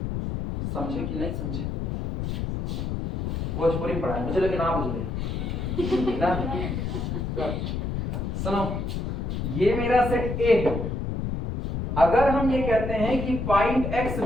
समझे कि नहीं समझे? भोजपुरी में पढ़ा, मुझे लगे ना बुझे ना। सुनो, ये मेरा सेट A है। अगर हम ये कहते हैं कि point X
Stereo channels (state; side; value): noise; left; rumble, 3 dB below the sound